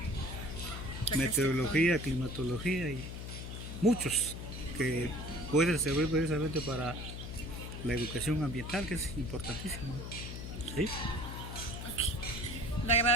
meteorología, climatología y muchos que pueden servir precisamente para la educación ambiental, que es importantísimo. ¿Sí? Okay. Le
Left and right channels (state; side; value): noise; left; hum, 7 dB below the sound